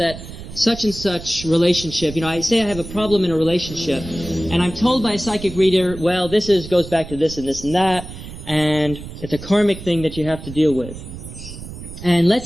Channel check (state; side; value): noise; right; rumble, 12 dB below the sound